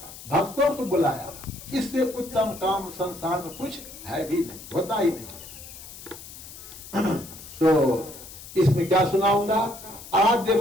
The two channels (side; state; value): left; noise; hiss, 15 dB below the sound